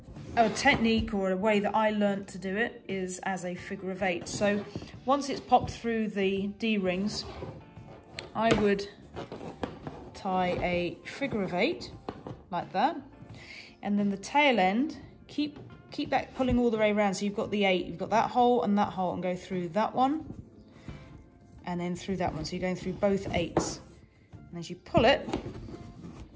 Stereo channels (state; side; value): identical; both; correlation 1.00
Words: technique or a way that I learnt to do it is as a figure of 8. So once it's popped through the D-rings, I would tie a figure of 8 like that, and then the tail end, keep that pulling all the way around. So you've got the 8, you've got that hole, and go through that one, and then through that one. So you're going through both 8s, and as you pull it,